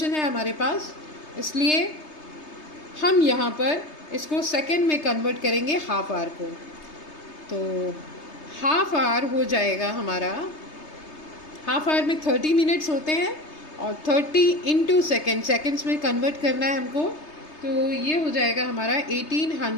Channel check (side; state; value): right; late; 3.3 ms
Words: है हमारे पास, इसलिए हम यहाँ पर इसको सेकंड में कन्वर्ट करेंगे हाफ आवर को। तो हाफ आवर हो जाएगा हमारा, हाफ आवर में 30 मिनट्स होते हैं और 30 इंटू सेकेंड्स में कन्वर्ट करना है हमको। तो ये हो जाएगा हमारा